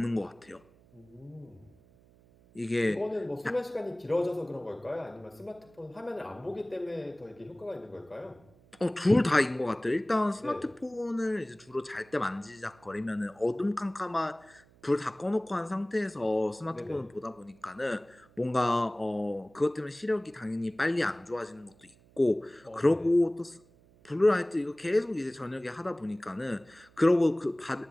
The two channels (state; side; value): noise; right; hum, 28 dB below the sound